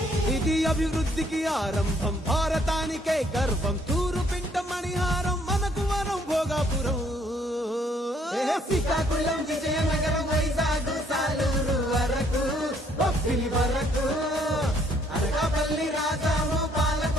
ఇది అభివృద్ధికి ఆరంభం భారతానికే గర్వం తూరు పింట మణిహారం మనకు వరం భోగాపురం శ్రీకాకుళం విజయనగరం వైజాగ్ సాలూరు వరకు బొబ్బిలి వరకు అనకాపల్లి రాజాము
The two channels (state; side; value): normal; both; correlation 0.66